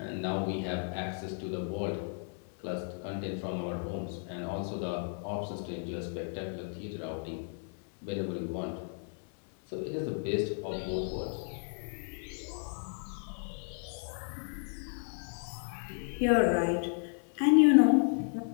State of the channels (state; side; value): silent; right; 55 dB below the other